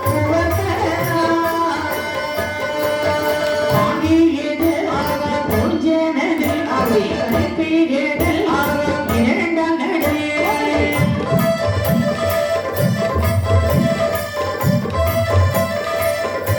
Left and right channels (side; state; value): both; identical; correlation 1.00